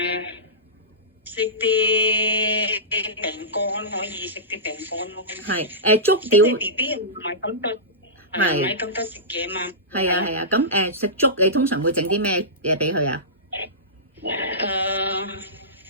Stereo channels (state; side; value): normal; both; correlation -0.18